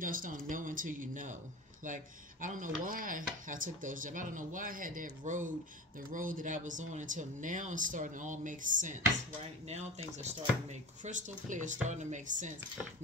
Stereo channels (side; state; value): both; normal; correlation 0.31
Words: don't know until you know. Like, I don't know why I took those jobs. I don't know why I had that road, the road that I was on, until now it's starting to all make sense, right? Now things are starting to make crystal clear, starting to make sense.